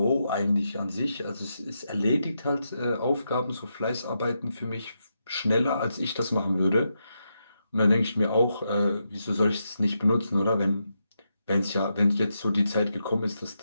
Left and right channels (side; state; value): both; inverted; correlation -0.84